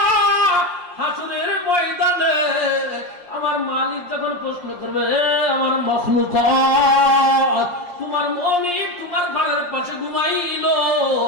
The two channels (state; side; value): late; left; 5.7 ms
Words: হাসরের ময়দানে আমার মালিক যখন প্রশ্ন করবে, আমার মাখলুকাত, তোমার মনিব তোমার ঘরের পাশে ঘুমাইলো,